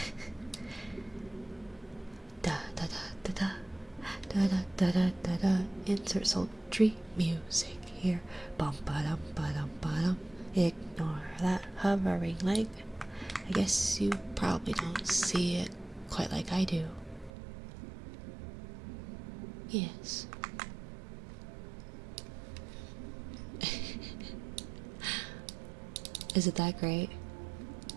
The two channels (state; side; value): drops out; left; at 17.3 s